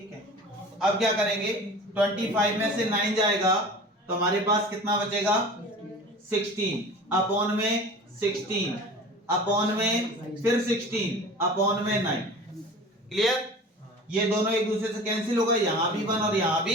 है, अब क्या करेंगे, 25 में से 9 जाएगा तो हमारे पास कितना बचेगा 16 अपॉन में 16 अपॉन में फिर 16 अपॉन में 9। क्लियर, ये दोनों एक दूसरे से कैंसिल हो गए, यहां भी 1 और यहां भी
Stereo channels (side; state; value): both; normal; correlation 0.39